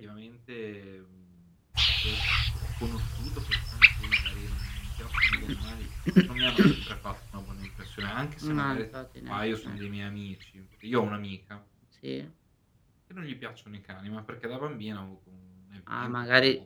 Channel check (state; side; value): identical; both; correlation 1.00